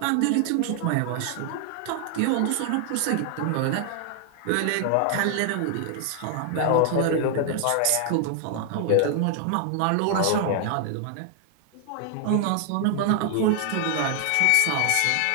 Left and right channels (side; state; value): both; different; correlation 0.00